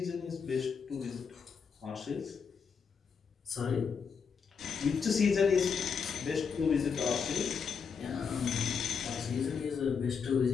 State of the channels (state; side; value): quieter; right; 6.1 dB